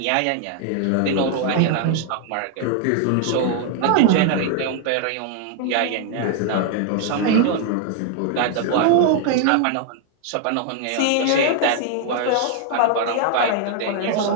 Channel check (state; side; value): different; both; correlation 0.00